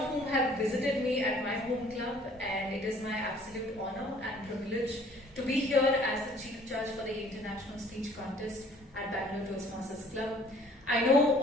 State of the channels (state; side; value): normal; both; correlation 0.55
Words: whom have visited me at my home club, and it is my absolute honor and privilege to be here as the Chief Judge for the International Speech Contest at Bangalore Toastmasters Club. I know